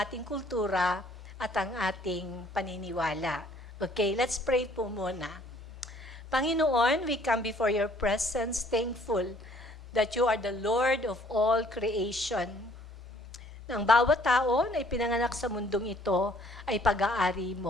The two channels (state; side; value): normal; both; correlation 0.60